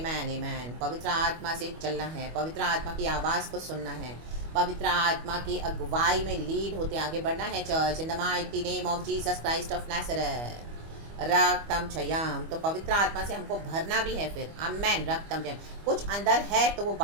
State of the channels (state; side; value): late; left; 25 ms